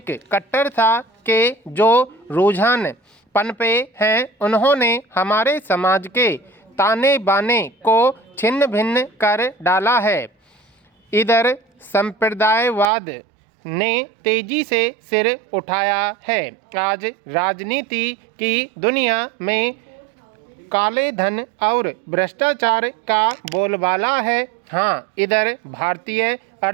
कट्टरता के जो रुझान पनपे हैं, उन्होंने हमारे समाज के ताने बाने को छिन्न भिन्न कर डाला है। इधर संप्रदायवाद ने तेजी से सिर उठाया है। आज राजनीति की दुनिया में काले धन और भ्रष्टाचार का बोलबाला है। हाँ, इधर भारतीय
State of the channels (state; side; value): drops out; left; at 12.9 s